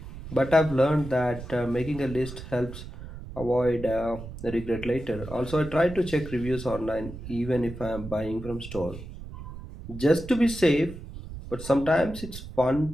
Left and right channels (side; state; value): right; noise; rumble, 12 dB below the sound